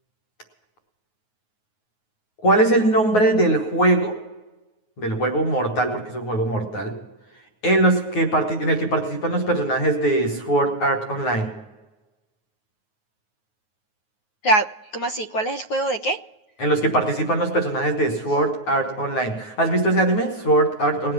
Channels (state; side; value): late; right; 9.4 ms